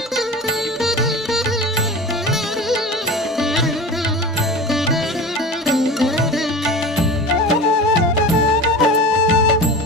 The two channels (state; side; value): normal; both; correlation 0.32